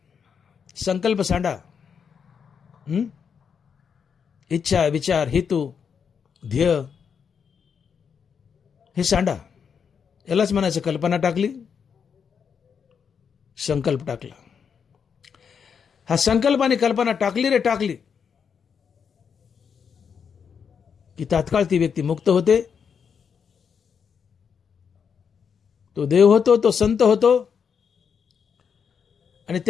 संकल्प सांडा. इच्छा, विचार, हेतू, ध्येय हे सांडा. यालाच म्हणायचं कल्पना टाकली, संकल्प टाकला. हा संकल्प आणि कल्पना टाकली रे टाकली की तात्काळ ती व्यक्ती मुक्त होते, तो देव होतो, तो संत होतो. आणि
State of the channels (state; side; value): quieter; right; 6.8 dB